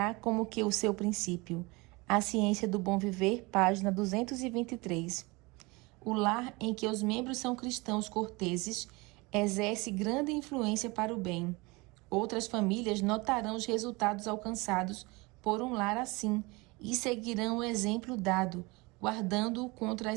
como que o seu princípio. A Ciência do Bom Viver, página 223. O lar em que os membros são cristãos corteses exerce grande influência para o bem. Outras famílias notarão os resultados alcançados por um lar assim e seguirão o exemplo dado, guardando-o contra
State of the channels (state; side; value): quieter; left; 24.9 dB